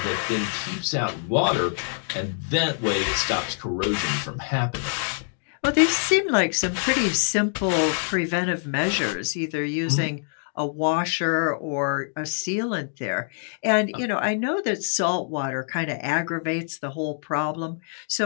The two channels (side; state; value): right; silent; digital silence